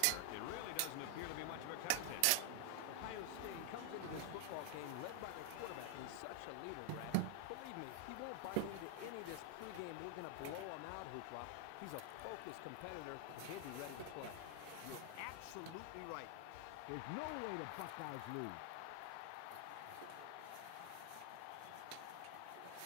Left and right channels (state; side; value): different; both; correlation 0.00